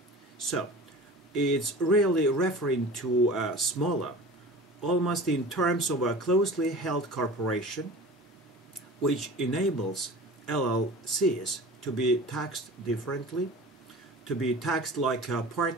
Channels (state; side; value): normal; both; correlation 0.38